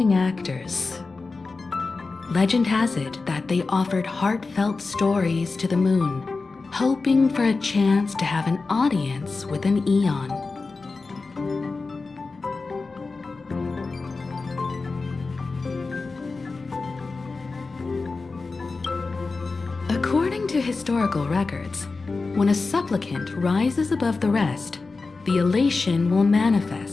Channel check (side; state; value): right; quieter; 4.0 dB